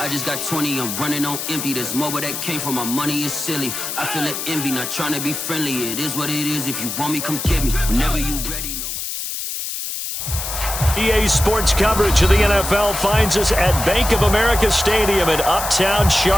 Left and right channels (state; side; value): noise; left; hiss, 5 dB below the sound